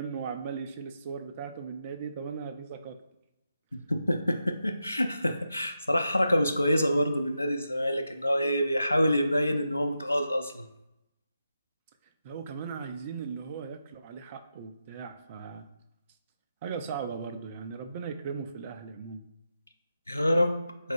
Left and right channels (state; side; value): inverted; both; correlation -0.87